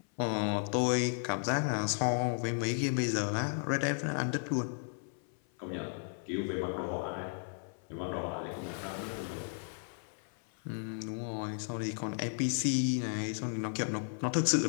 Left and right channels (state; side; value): silent; right; 55 dB below the other